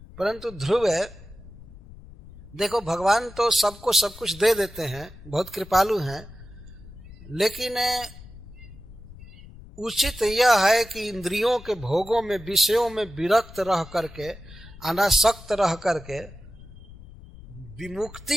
परंतु ध्रुव है, देखो भगवान तो सबको सब कुछ दे देते हैं, बहुत कृपालु हैं, लेकिन उचित यह है कि इंद्रियों के भोगों में, विषयों में विरक्त रह करके, अनासक्त रह करके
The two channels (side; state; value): left; noise; rumble, 18 dB below the sound